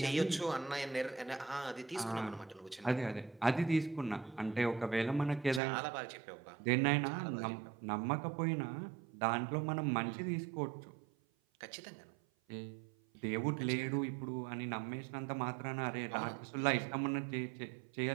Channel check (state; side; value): drops out; left; at 5.6 s